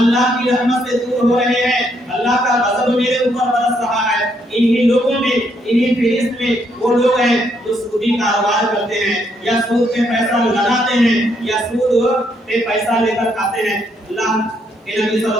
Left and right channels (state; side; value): normal; both; correlation 0.73